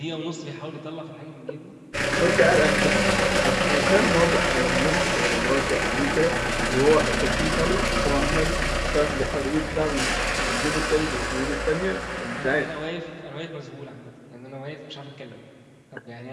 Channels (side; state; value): both; identical; correlation 1.00